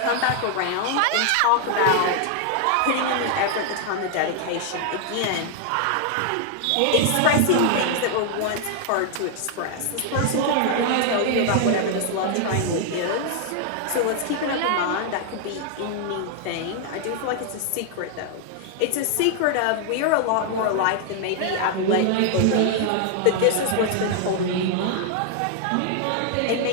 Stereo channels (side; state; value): both; different; correlation 0.00